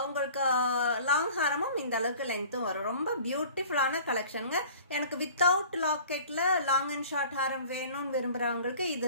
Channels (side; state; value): both; inverted; correlation -0.46